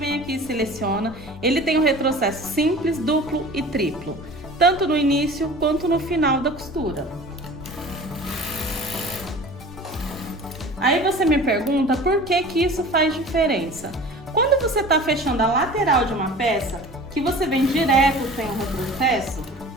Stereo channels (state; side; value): normal; both; correlation 0.41